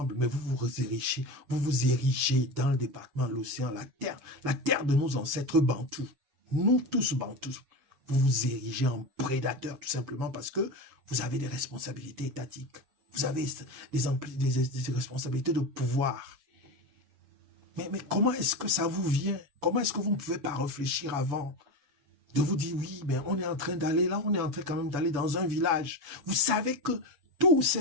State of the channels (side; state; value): left; late; 7.0 ms